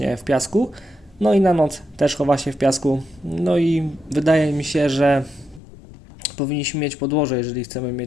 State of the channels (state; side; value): drops out; right; at 5.6 s